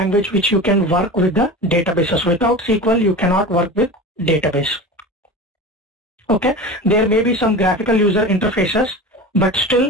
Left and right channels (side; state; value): both; normal; correlation 0.31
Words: which you can work with the databases. Without SQL you cannot work with database. Okay, there may be some graphical user interfaces, but